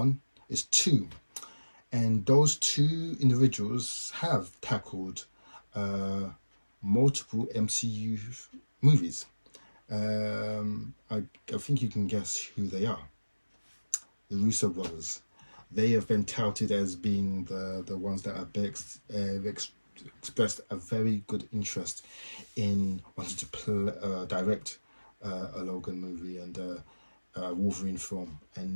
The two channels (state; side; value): inverted; both; correlation -1.00